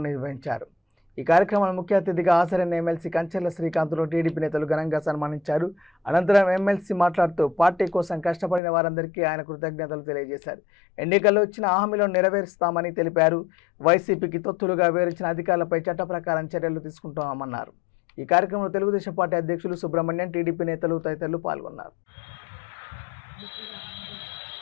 నిర్వహించారు. ఈ కార్యక్రమాన్ని ముఖ్య అతిథిగా హాజరైన ఎమ్మెల్సీ కంచెల శ్రీకాంత్ను టీడీపీ నేతలు ఘనంగా సన్మానించారు. అనంతరం ఎమ్మెల్సీ మాట్లాడుతూ పార్టీ కోసం కష్టపడిన వారందరికీ ఆయన కృతజ్ఞతలు తెలియజేశారు. ఎన్నికల్లో ఇచ్చిన హామీలను నెరవేరుస్తామని తెలిపారు. వైసీపీకి తొత్తులుగా వివరించిన అధికారులపై చట్ట ప్రకారం చర్యలు తీసుకుంటామన్నారు. ఈ కార్యక్రమంలో తెలుగుదేశం పార్టీ అధ్యక్షులు సుబ్రహ్మణ్యం, టీడీపీ నేతలు తదితరులు పాల్గొన్నారు.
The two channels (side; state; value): right; drops out; at 8.6 s